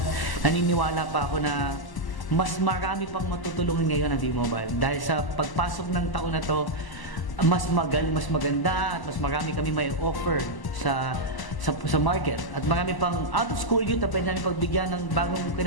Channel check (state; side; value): late; right; 1.0 ms